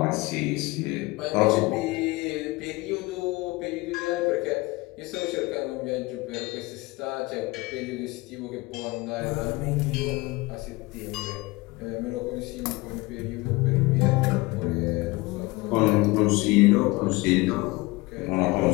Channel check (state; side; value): quieter; right; 22.6 dB